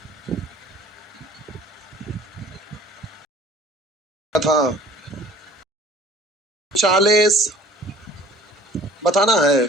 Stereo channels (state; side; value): normal; both; correlation 0.49